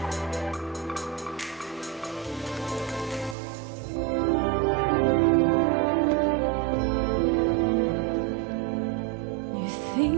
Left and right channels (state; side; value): drops out; left; at 3.4 s